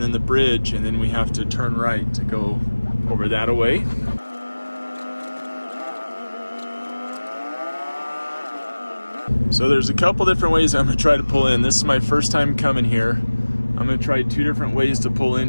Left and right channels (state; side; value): inverted; both; correlation -1.00